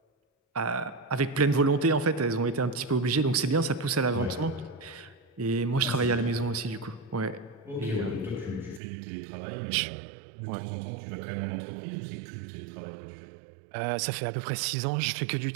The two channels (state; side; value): drops out; left; at 8.8 s